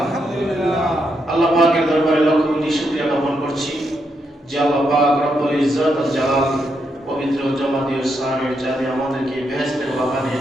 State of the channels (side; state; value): both; normal; correlation 0.80